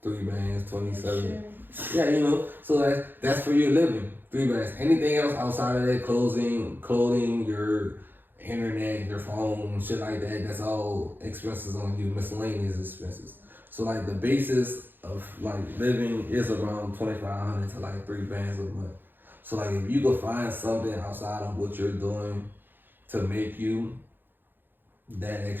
3 bands, 27. Yeah, you know, so that's for your living. 3 bands. Anything else outside of that, clothing, your internet, your phone, shit like that, that's all expenses on you, miscellaneous expenses. So like the basis of like living is around 2,500 to like 3 bands a month. So like if you could find something outside of what you're doing to make you that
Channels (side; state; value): left; late; 0.095 ms